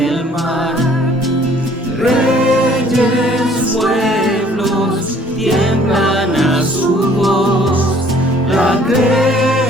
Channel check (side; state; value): both; normal; correlation 0.57